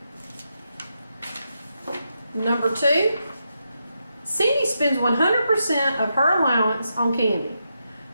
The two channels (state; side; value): inverted; both; correlation -0.84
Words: Number 2. Cindy spends 100% of her allowance on candy.